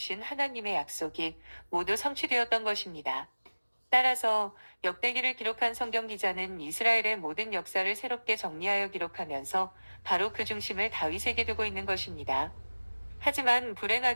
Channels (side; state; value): both; inverted; correlation -1.00